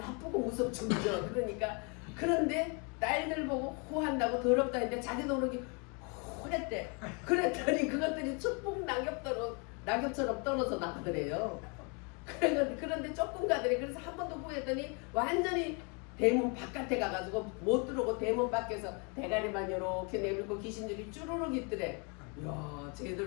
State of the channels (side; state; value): right; quieter; 34.1 dB